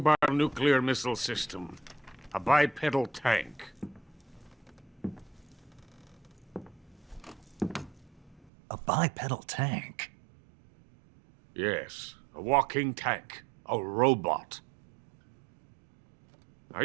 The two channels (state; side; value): drops out; left; at 8.5 s